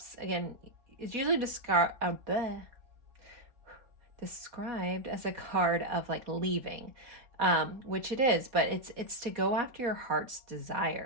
again, is usually described as a card of like leaving. Which it is, but it's to go after your heart's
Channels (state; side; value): late; left; 4.1 ms